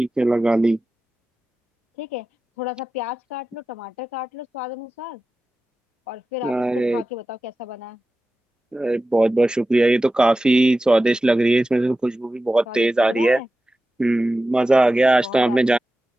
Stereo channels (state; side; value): normal; both; correlation 0.94